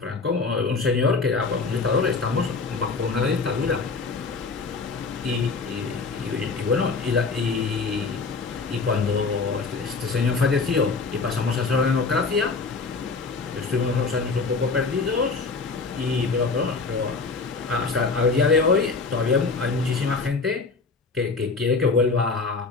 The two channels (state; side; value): quieter; right; 4.3 dB